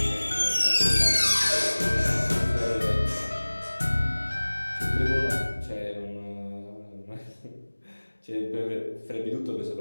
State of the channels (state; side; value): inverted; both; correlation -1.00